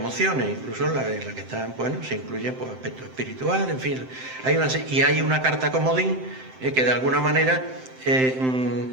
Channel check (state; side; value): late; left; 7.7 ms